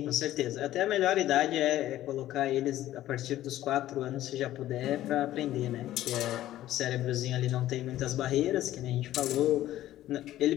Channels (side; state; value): right; quieter; 13.9 dB